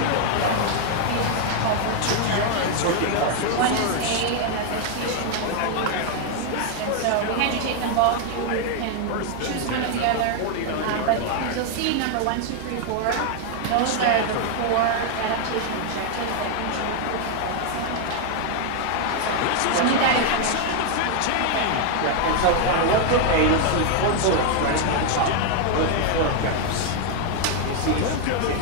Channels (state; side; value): different; both; correlation 0.01